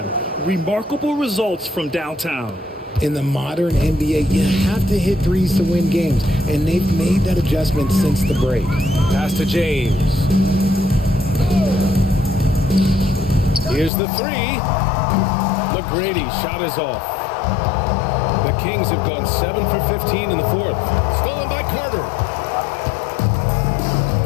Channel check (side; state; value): right; drops out; at 13.9 s